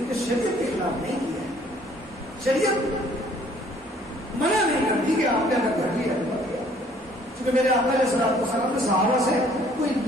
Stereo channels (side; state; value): both; normal; correlation 0.59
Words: نے شریعت کے خلاف نہیں کیا ہے. شریعت منع نہیں کرتی کہ آپ نے اگر گھر لیا کیونکہ میرے آقا علیہ السلام نے صحابہ سے کوئی